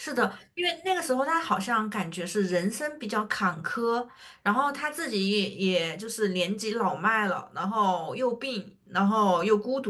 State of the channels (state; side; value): identical; both; correlation 1.00